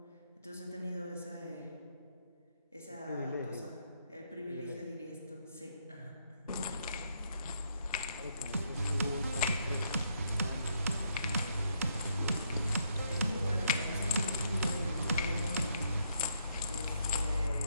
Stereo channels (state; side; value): inverted; both; correlation -0.74